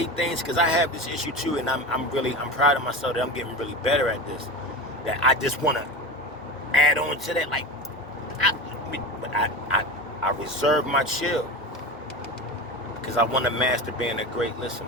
things, because I have this issue too, and I'm proud of myself that I'm getting really better at this, that I just want to add on to that, like, I reserve my chill, because I want to master being a great listener.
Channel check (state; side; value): normal; both; correlation 0.27